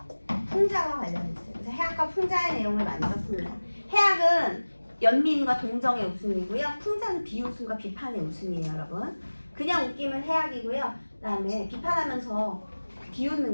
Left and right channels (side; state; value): both; inverted; correlation -1.00